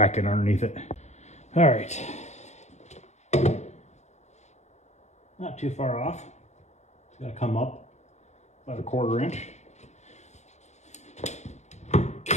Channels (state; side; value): late; right; 0.33 ms